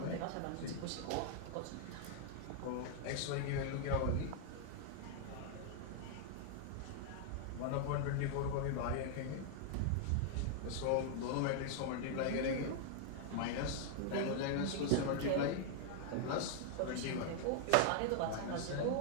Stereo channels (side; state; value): both; different; correlation 0.00